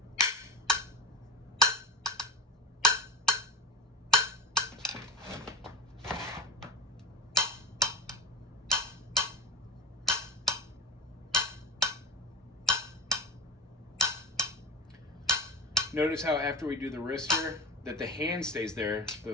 Notice how after we do the wrist here, that the hand stays there,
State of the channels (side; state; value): both; normal; correlation 0.29